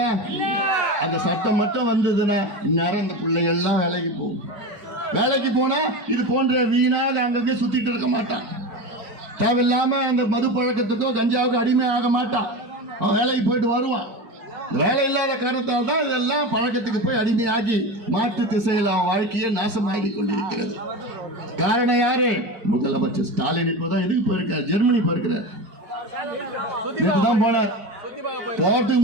அந்த சட்டம் மட்டும் வந்ததுன்னா இந்நேரம் இந்த பிள்ளைகள் எல்லாம் வேலைக்கு போகும். வேலைக்கு போனா இது போன்ற வீணாக அங்கங்கே சுத்திட்டு இருக்க மாட்டான். தேவையில்லாம அந்த மது பழக்கத்துக்கோ கஞ்சாவுக்கோ அடிமை ஆக மாட்டான். அவன் வேலைக்கு போயிட்டு வருவான். வேலை இல்லாத காரணத்தால் தான் இதெல்லாம் பழக்கத்துக்கு போய் அடிமையாகி மாற்று திசையில் அவன் வாழ்க்கையை நாசமாகி கொண்டிருக்கிறது. காரணம் யாரு? முதலமைச்சர் ஸ்டாலின். இப்போதான் எதுக்கு போயிருக்காரு? ஜெர்மனி போயிருக்கிறார். போன போட்டு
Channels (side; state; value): left; late; 4.5 ms